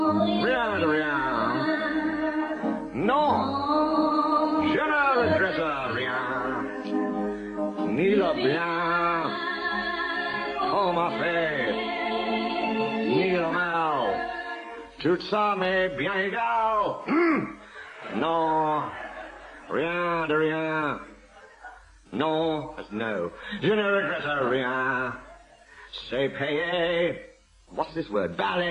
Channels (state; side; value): identical; both; correlation 1.00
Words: rien de rien. Non, je ne regrette rien. Ni le bien qu'on m'a fait, ni le mal. Tout ça m'est bien égal. Non, rien de rien. Non, that's no. Je ne regrette rien. C'est payé. What's this word?